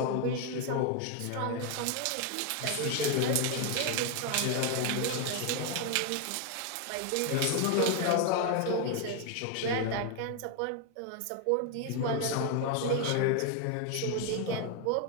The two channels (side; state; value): both; different; correlation 0.01